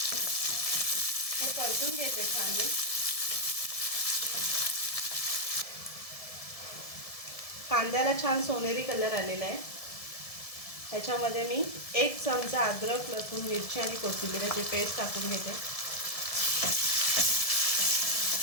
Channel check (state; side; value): late; right; 1.7 ms